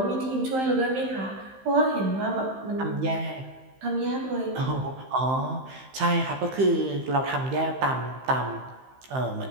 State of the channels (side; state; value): left; late; 15 ms